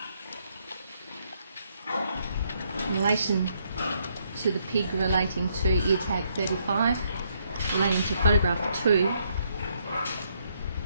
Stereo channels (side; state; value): both; inverted; correlation -0.73